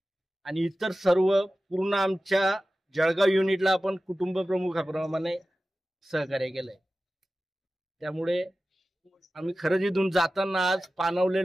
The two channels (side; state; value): both; normal; correlation 0.95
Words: आणि इतर सर्व पूर्ण आमच्या जळगाव युनिटला आपण कुटुंब प्रमुखाप्रमाणे सहकार्य केलंय. त्यामुळे आम्ही खरंच इथून जाताना आज